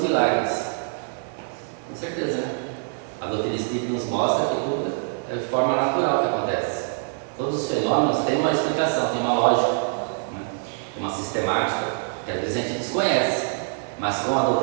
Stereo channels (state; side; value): silent; left; 62 dB below the other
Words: milagres. Com certeza, né? A doutrina espírita nos mostra que tudo é de forma natural que acontece. Todos os fenômenos têm uma explicação, têm uma lógica, né? Uma sistemática, que às vezes a gente desconhece. Mas com a